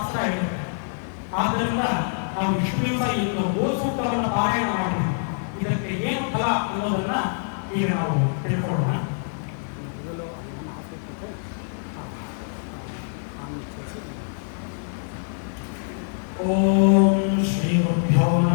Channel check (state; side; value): silent; right; digital silence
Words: ಹೇಳಿದೆ. ಆದ್ದರಿಂದ ನಾವು ಇಷ್ಟು ದಿವಸ ಇಂದು ಗೋ ಸೂಕ್ತವನ್ನು ಪಾರಾಯಣ ಮಾಡಿದ್ವಿ. ಇದಕ್ಕೆ ಏನು ಫಲ ಅನ್ನೋದನ್ನ ಈಗ ನಾವು ತಿಳ್ಕೊಳ್ಳೋಣ. ಓಂ ಶ್ರೀ ಗುರುಭ್ಯೋ